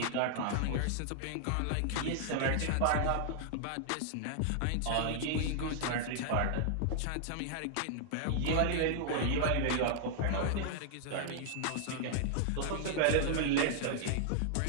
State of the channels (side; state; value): both; different; correlation -0.01